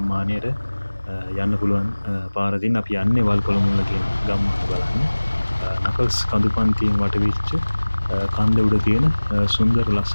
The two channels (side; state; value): both; inverted; correlation -1.00